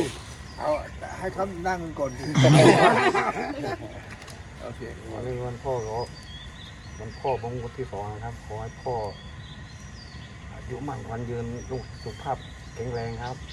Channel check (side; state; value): both; identical; correlation 1.00